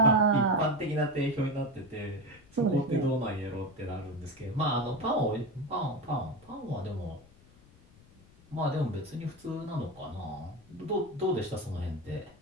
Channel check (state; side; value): noise; left; rumble, 26 dB below the sound